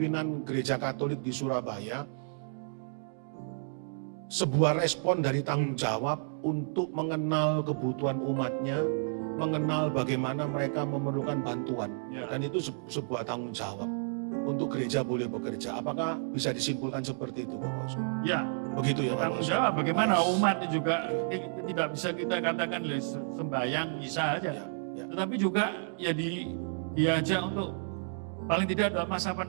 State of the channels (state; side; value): silent; left; digital silence